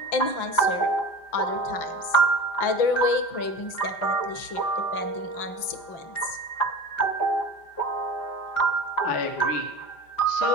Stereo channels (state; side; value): late; right; 5.9 ms